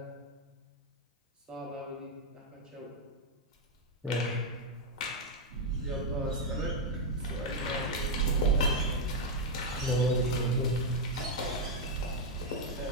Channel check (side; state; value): both; normal; correlation 0.01